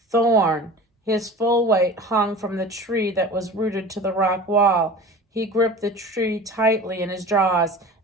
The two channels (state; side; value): normal; both; correlation 0.37